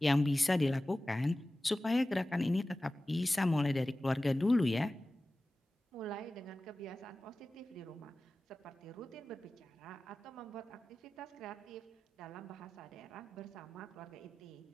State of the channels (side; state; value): both; normal; correlation 0.96